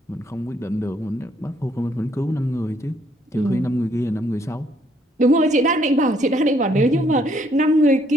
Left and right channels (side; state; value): both; normal; correlation 0.68